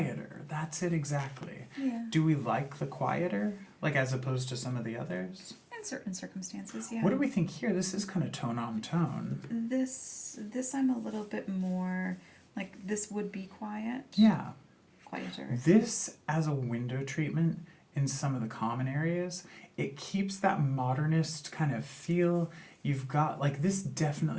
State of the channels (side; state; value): both; identical; correlation 1.00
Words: That's it exactly. Yeah. Do we like the quieter, like as opposed to some of the others? In certain circumstances, yeah. What do we think here? This is kind of tone on tone. This I'm a little bit more like this would be quiet. Yeah. Quieter. This as a window treatment in some of the common areas, it keeps that modernist kind of feel. You've got, like, this